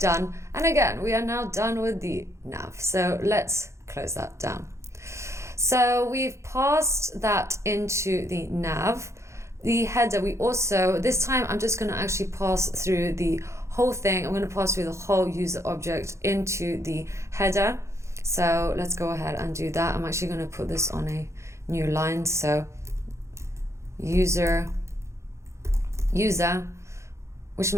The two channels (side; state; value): left; late; 0.14 ms